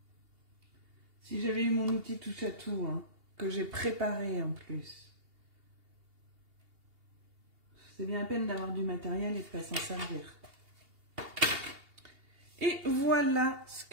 Si j'avais eu mon outil touche à tout, hein, que j'ai préparé en plus. C'est bien la peine d'avoir du matériel et de ne pas s'en servir. Et voilà ce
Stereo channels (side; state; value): left; late; 2.8 ms